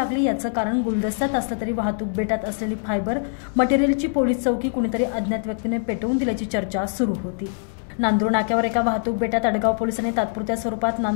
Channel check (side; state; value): right; silent; digital silence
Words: याचं कारण गुलदस्त्यात असलं तरी वाहतूक बेटात असलेली फायबर मटेरियलची पोलीस चौकी कुणीतरी अज्ञात व्यक्तीने पेटवून दिल्याची चर्चा सुरू होती. नांदूरनाक्यावर एका वाहतूक बेटात अडगाव पोलिसांनी तात्पुरत्या स्वरूपात